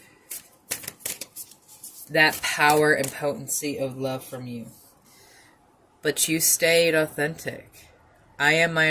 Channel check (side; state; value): both; identical; correlation 1.00